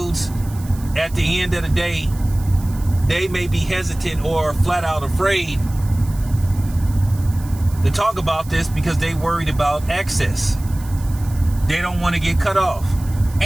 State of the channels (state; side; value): noise; right; hiss, 20 dB below the sound